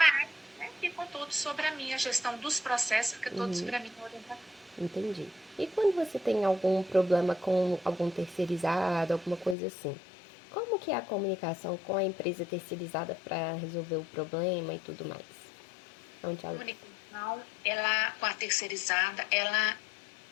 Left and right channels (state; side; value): drops out; right; at 9.6 s